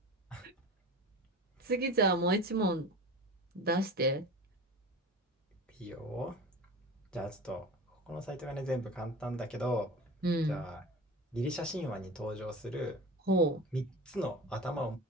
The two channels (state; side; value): normal; both; correlation 0.33